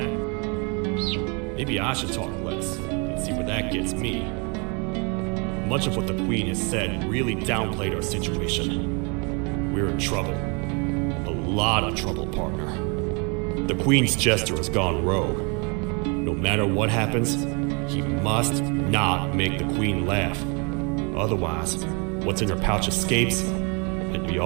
Maybe I should talk less and see where that gets me. Much of what the Queen has said really downplayed our situation. We're in trouble. A lot of trouble, partner. The Queen's jester has gone rogue. No matter what happens, he must not make the Queen laugh. Otherwise, what's in her pouch escapes, and we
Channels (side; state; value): left; quieter; 32.7 dB